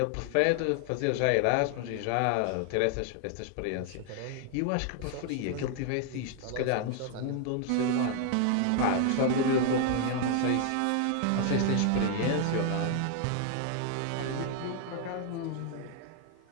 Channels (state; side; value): different; both; correlation 0.00